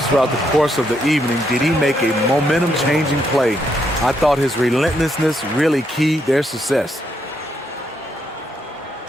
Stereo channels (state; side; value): normal; both; correlation 0.76